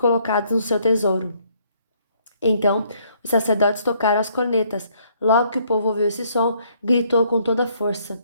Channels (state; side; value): inverted; both; correlation -0.67